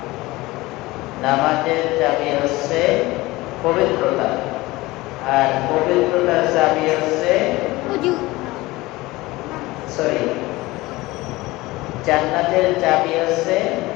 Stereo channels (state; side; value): quieter; right; 20.1 dB